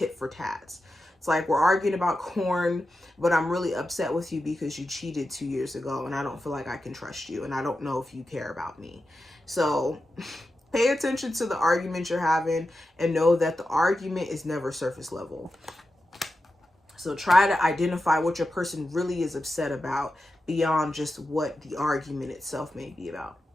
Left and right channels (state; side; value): normal; both; correlation 0.91